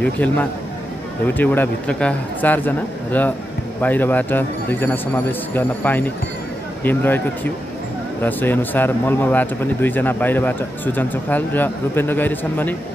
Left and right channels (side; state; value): both; normal; correlation 0.88